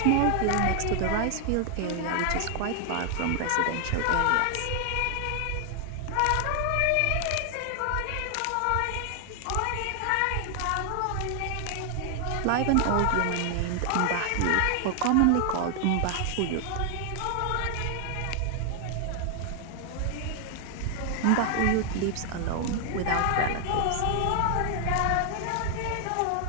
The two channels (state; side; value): different; both; correlation 0.00